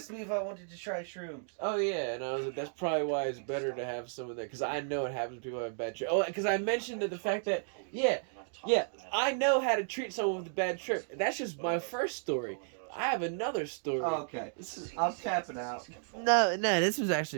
me if I wanted to try shrooms. Oh yeah, and I was like, "That's probably why it's better to have some of that," because I know it happens to people who have bad trip. Oh, because I mentioned the fact that yeah, I know how to treat someone with a bad trip. That's just my first story. I have another story. Oh, okay. I'm tapping out. No, this was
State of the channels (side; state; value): left; silent; digital silence